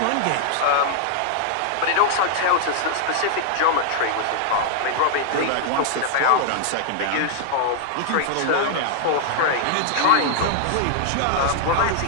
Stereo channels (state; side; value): different; both; correlation -0.01